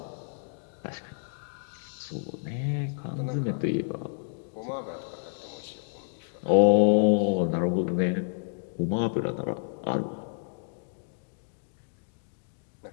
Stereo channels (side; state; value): right; silent; digital silence